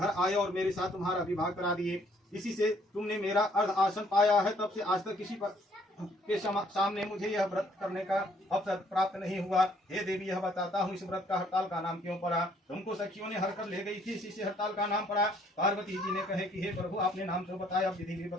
आए और मेरे साथ तुम्हारा विवाह करा दिए। इसी से तुमने मेरा अर्ध आसन पाया है। तब से आज तक किसी के सामने मुझे यह व्रत करने का अवसर प्राप्त नहीं हुआ। हे देवी, यह बताता हूँ, इस व्रत का हड़ताल का नाम क्यों पड़ा। तुमको सखियों ने हर कर ले गई थी, इसी से हड़ताल का नाम पड़ा। पार्वती जी ने कहे कि हे प्रभु, आपने नाम तो बताया, अब विधि भी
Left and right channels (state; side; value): normal; both; correlation 0.64